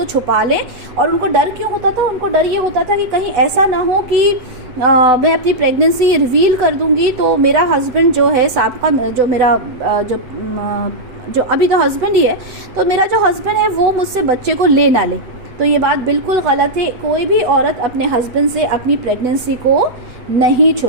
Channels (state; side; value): late; left; 7.9 ms